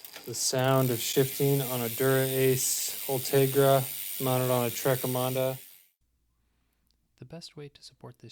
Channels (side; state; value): both; identical; correlation 1.00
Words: The sound of shifting on a Dura Ace Ultegra mounted on a Trek Emonda. The best way to support